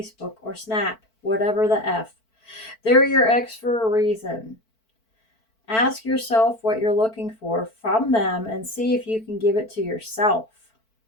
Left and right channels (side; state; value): right; late; 4.5 ms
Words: or Snap, whatever the F. They're your ex for a reason. Ask yourself what you're looking for from them and see if you can give it to yourself.